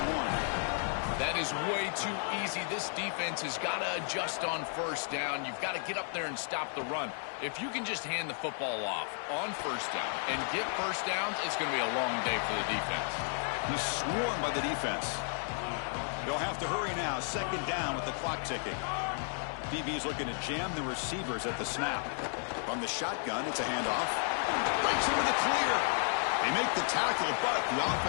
That is way too easy. This defense has got to adjust on 1st down. You've got to get up there and stop the run. If you can just hand the football off on 1st down and get 1st downs, it's going to be a long day for the defense. He's swarmed by the defense. They'll have to hurry now. 2nd down with the clock ticking. DB's looking to jam the receivers at the snap. From the shotgun, it's a handoff. Breaks into the clear. They make the tackle, but the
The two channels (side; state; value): right; silent; 56 dB below the other